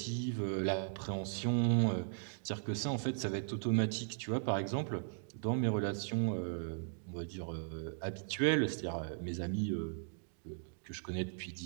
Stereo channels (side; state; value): left; silent; digital silence